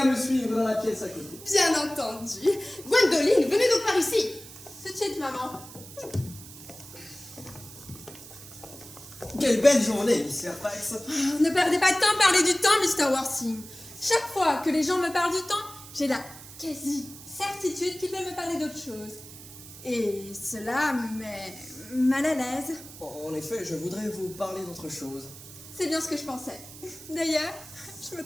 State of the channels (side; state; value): right; noise; hiss, 16 dB below the sound